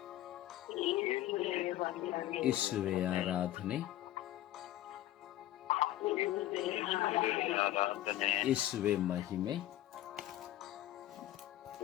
ಯೇಸುವೇ ಆರಾಧನೆ, ಯೇಸುವೇ ಮಹಿಮೆ,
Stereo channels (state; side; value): quieter; right; 14.2 dB